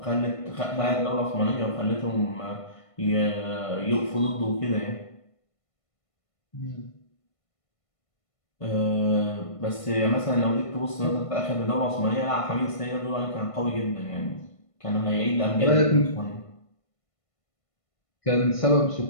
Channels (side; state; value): right; late; 1.5 ms